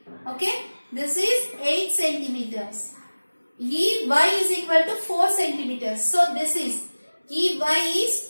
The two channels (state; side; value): inverted; both; correlation -1.00